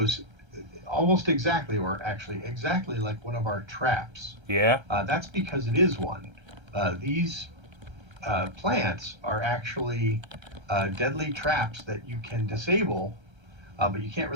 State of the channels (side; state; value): left; late; 1.3 ms